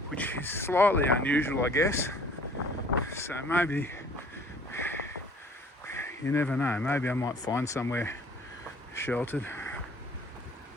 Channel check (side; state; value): both; normal; correlation 0.53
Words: which is slightly unusual, I guess. So maybe, you never know, maybe I might find somewhere sheltered.